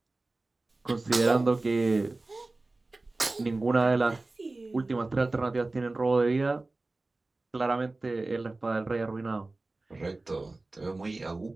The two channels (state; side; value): quieter; left; 3.1 dB